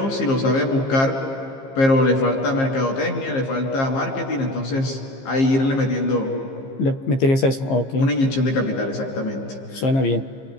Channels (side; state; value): right; late; 15 ms